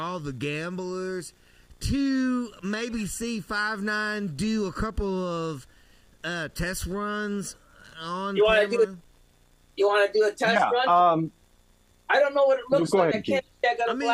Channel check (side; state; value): both; identical; correlation 1.00